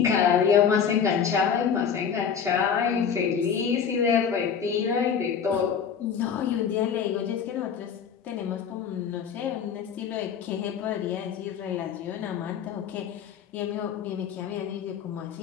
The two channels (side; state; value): right; quieter; 7.3 dB